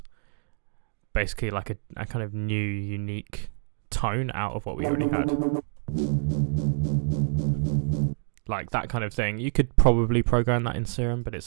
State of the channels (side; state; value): left; silent; digital silence